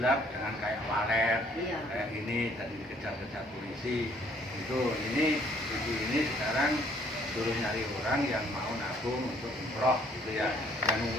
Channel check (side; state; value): both; normal; correlation 0.62